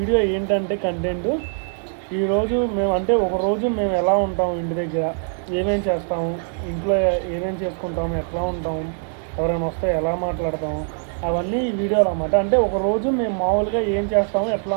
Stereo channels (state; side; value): silent; left; 64 dB below the other